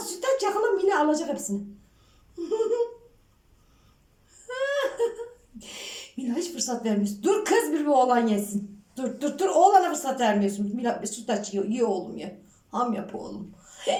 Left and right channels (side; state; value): both; identical; correlation 1.00